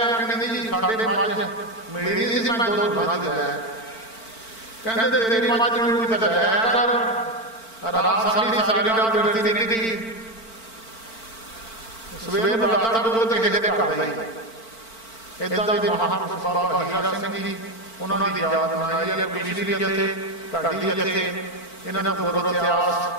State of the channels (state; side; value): late; right; 4.5 ms